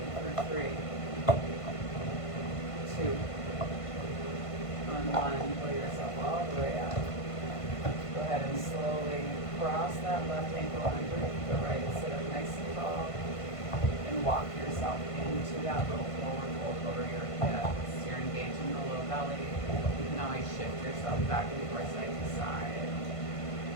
for 3, 2, on 1, pull yourself all the way up. Go ahead and slowly cross that left ankle underneath the right, sit up nice and tall, and walk yourself into that little forward fold over your hips. You're engaging the low belly. You can always shift yourself back and forth side to side.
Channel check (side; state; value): right; late; 1.5 ms